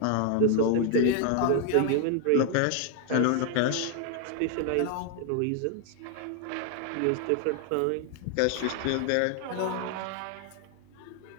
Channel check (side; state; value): both; different; correlation 0.00